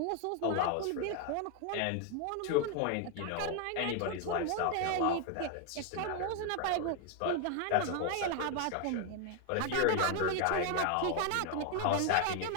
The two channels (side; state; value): both; different; correlation 0.01